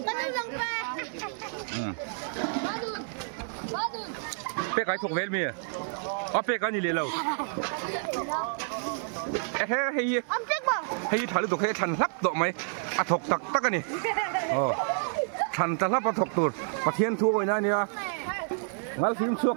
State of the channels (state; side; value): silent; left; 58 dB below the other